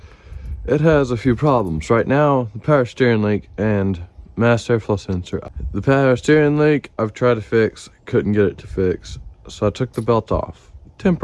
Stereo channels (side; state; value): both; identical; correlation 1.00